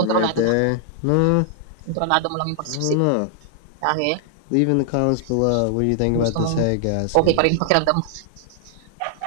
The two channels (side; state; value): both; different; correlation 0.00